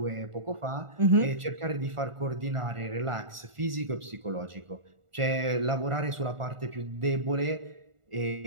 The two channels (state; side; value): late; left; 1.4 ms